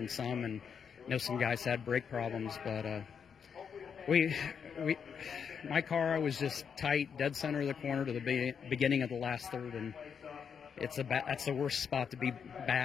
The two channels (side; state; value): right; quieter; 6.9 dB